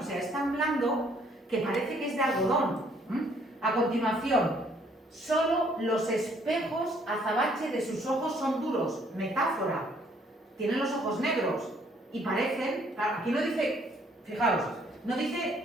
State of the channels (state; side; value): normal; both; correlation 0.64